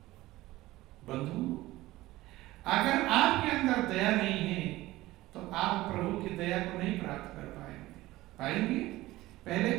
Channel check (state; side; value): quieter; left; 17.7 dB